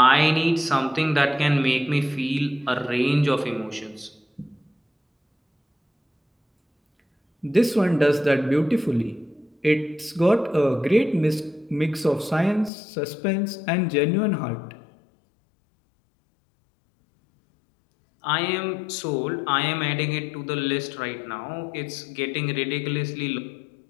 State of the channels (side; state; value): right; drops out; at 12.7 s